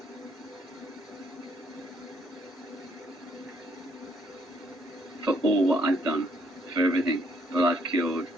For all what I've done, for everything that I've killed,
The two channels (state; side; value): normal; both; correlation 0.69